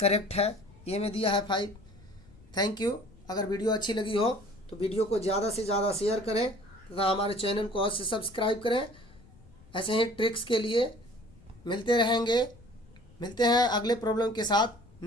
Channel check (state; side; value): noise; left; rumble, 24 dB below the sound